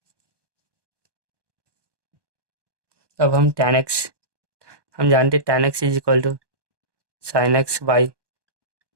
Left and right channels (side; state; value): left; late; 1.2 ms